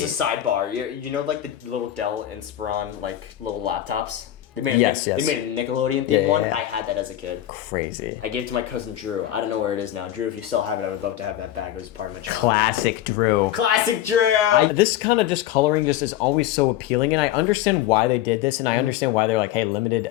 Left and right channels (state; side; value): quieter; right; 12.7 dB